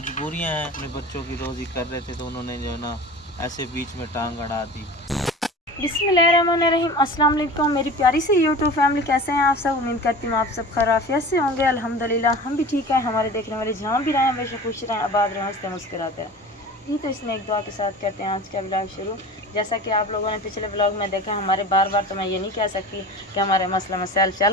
हैं, अपने बच्चों की रोज़ी कर रहे थे तो उन्होंने जो है ना ऐसे बीच में टांग अड़ा दी। बिस्मिल्लाहिर्रहमानिर्रहीम, अस्सलाम वालेकुम मेरी प्यारी सी यूट्यूब फैमिली, कैसे हैं आप सब? उम्मीद करती हूँ आप सब खैरियत से होंगे। अल्हम्दुलिल्लाह हम भी ठीक हैं। हमारे देखने वाले जहाँ भी रहें हमेशा खुश रहें, आबाद रहें, हंसते मुस्कुराते हैं। जी तो इसमें एक दुआ के साथ करते हैं आज का ब्लॉग शुरू। जैसा कि आप लोगों ने पिछले ब्लॉग में देखा, हमारे बार बार तो मैं ये नहीं कह सकती कि हमारे मसला मसाइल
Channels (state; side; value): normal; both; correlation 0.37